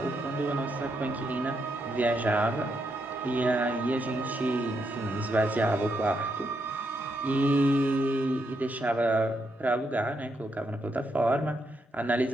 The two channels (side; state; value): both; normal; correlation 0.79